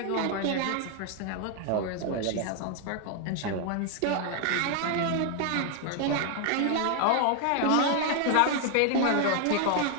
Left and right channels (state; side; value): different; both; correlation 0.00